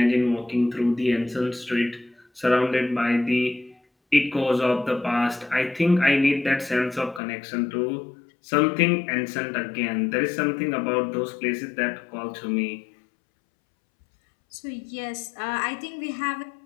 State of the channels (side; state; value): right; drops out; at 7.2 s